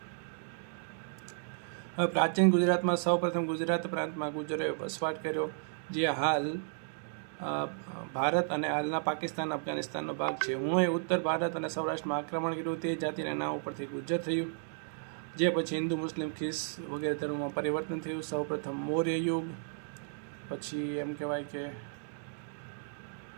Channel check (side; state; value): left; silent; digital silence